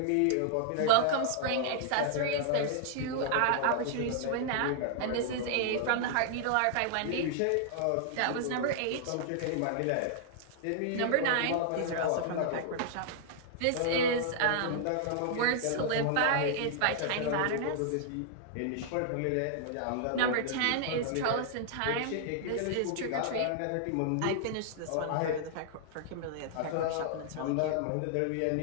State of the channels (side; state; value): both; different; correlation -0.01